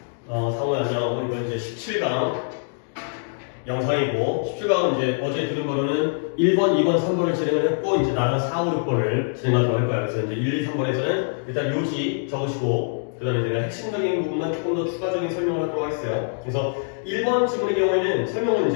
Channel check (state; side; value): silent; right; digital silence